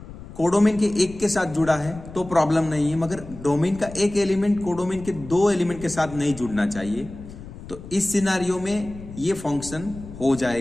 कोडोमेन के एक के साथ जुड़ा है तो प्रॉब्लम नहीं है, मगर डोमेन का एक एलिमेंट कोडोमेन के 2 एलिमेंट के साथ नहीं जुड़ना चाहिए। तो इस सिनारियो में ये फंक्शन हो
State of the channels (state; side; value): noise; left; rumble, 15 dB below the sound